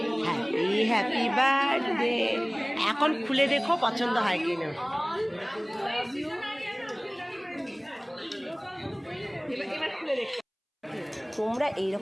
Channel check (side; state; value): both; identical; correlation 1.00